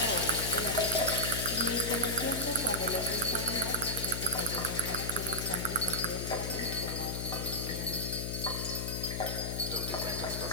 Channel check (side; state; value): left; noise; hum, 3 dB below the sound